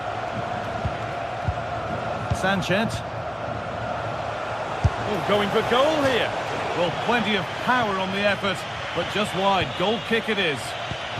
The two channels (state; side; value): identical; both; correlation 1.00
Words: Sanchez. Oh, going for goal here. Well, plenty of power on the effort, but just wide. Goal kick it is.